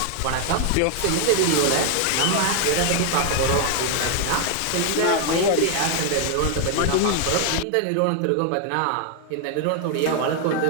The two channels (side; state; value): both; different; correlation 0.00